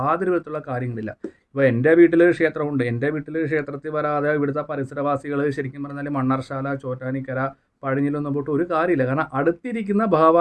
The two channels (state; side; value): identical; both; correlation 1.00